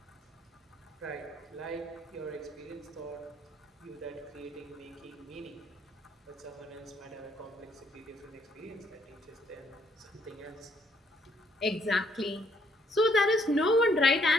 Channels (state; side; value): normal; both; correlation 0.69